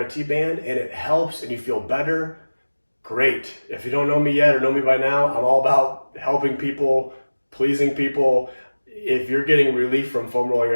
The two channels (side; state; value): both; inverted; correlation -1.00